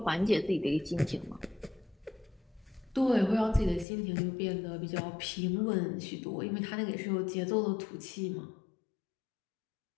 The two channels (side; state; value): right; drops out; at 3.9 s